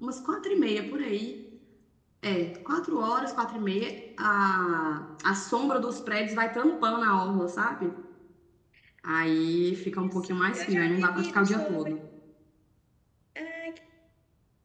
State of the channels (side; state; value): both; identical; correlation 1.00